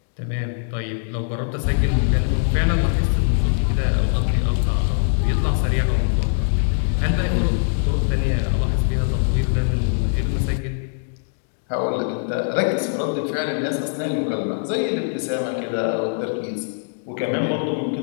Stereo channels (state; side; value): silent; right; digital silence